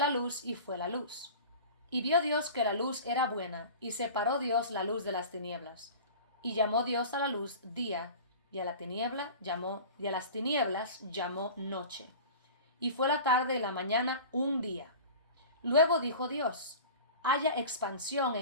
luz, y fue la luz. Y vio Dios que la luz era buena, y separó Dios la luz de las tinieblas. Y llamó Dios a la luz día, y a las tinieblas llamó noche. Y fue la tarde y la mañana un día. Luego dijo Dios, haya expansión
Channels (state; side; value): inverted; both; correlation -0.37